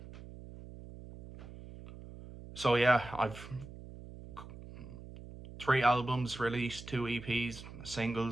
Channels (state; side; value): noise; right; hum, 15 dB below the sound